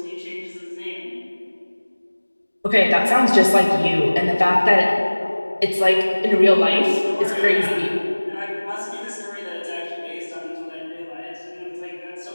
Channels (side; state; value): both; inverted; correlation -1.00